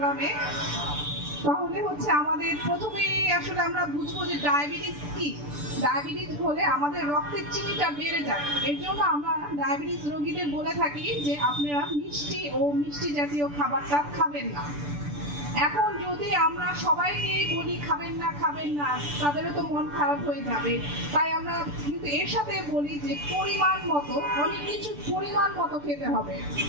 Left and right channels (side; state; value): left; late; 6.9 ms